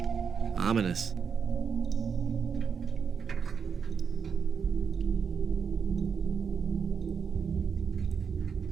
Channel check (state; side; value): quieter; left; 6.4 dB